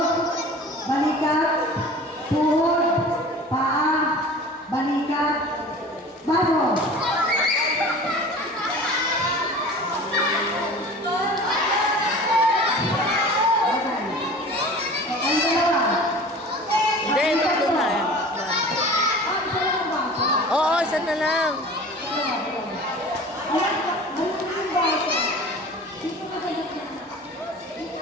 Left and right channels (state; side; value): normal; both; correlation 0.40